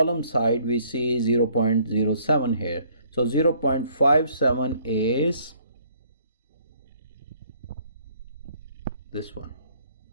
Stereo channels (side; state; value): both; inverted; correlation -0.62